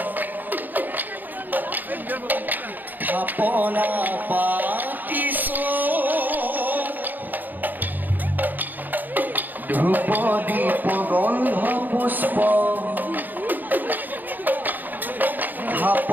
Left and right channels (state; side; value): late; left; 0.086 ms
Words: থাপনা পাতিছো ধূপ দীপ গন্ধ পুষ্প